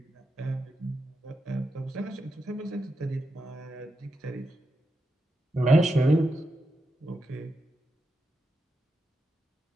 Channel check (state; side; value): normal; both; correlation 0.87